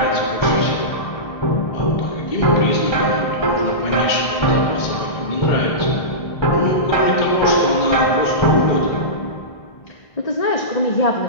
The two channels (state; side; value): late; right; 1.5 ms